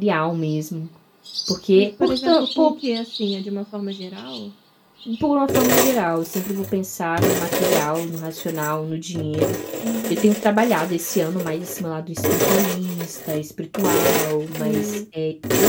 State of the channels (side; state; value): both; identical; correlation 1.00